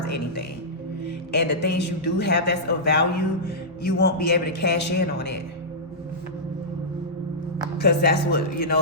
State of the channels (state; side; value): normal; both; correlation -0.14